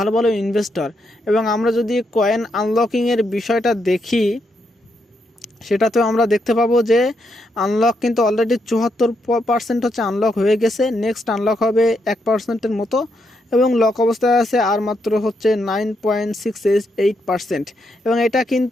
ভালো ইনভেস্টর। এবং আমরা যদি কয়েন আনলকিংয়ের বিষয়টা দেখি, সেটাতেও আমরা দেখতে পাবো যে আনলক কিন্তু অলরেডি 74% হচ্ছে আনলক হয়ে গেছে। নেক্সট আনলক হবে 1%-এর মতো এবং লক অবস্থায় আছে আর মাত্র হচ্ছে 9.68%। এবং এটা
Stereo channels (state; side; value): normal; both; correlation 0.79